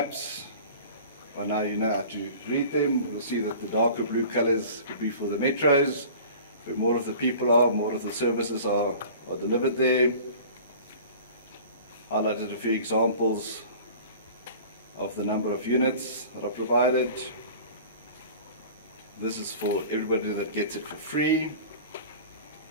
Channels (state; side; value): inverted; both; correlation -0.43